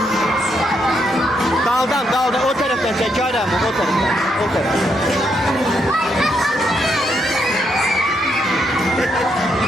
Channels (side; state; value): both; normal; correlation 0.77